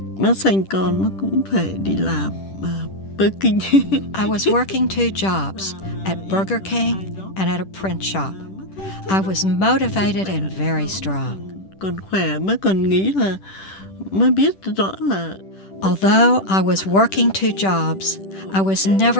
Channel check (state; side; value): late; right; 10 ms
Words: Nó sinh con nó cũng phải đi làm Burger King. I was working 2 jobs, at Burger King and at a print shop. I was motivated and very strong. Còn khỏe mới còn nghĩ là mới biết rõ là Although I was working 2 jobs, I was